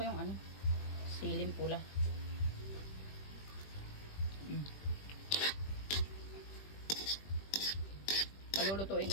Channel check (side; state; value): right; late; 20 ms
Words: yung ano, silim pula. Palulutuin